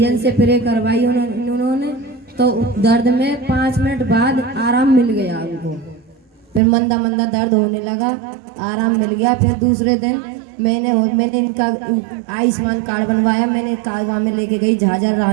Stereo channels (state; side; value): drops out; left; at 6.6 s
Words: से प्रे करवाई उन्होंने, तो दर्द में 5 मिनट बाद आराम मिल गया उनको। फिर मंदा दर्द होने लगा, आराम मिल गया। फिर दूसरे दिन मैंने इनका आयुष्मान कार्ड बनवाया। मैंने वहाँ में लेके गई झाझर